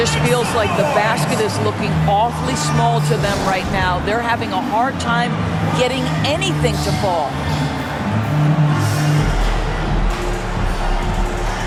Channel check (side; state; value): both; identical; correlation 1.00